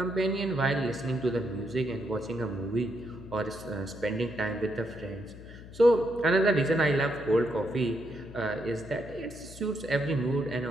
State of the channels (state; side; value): noise; left; hum, 16 dB below the sound